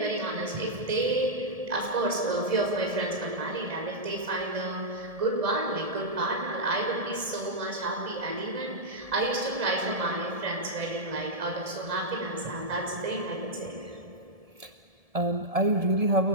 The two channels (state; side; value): late; left; 1.7 ms